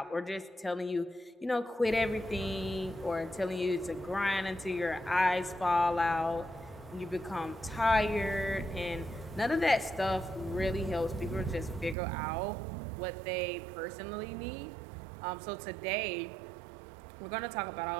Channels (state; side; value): drops out; left; at 12.0 s